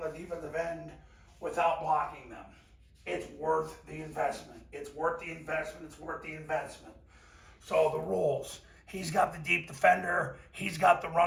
and the defensive end without blocking them. It's worth the investment. It's worth the investment. It's worth the investment. So the rules. He's got the deep defender. He's got the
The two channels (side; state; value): both; identical; correlation 1.00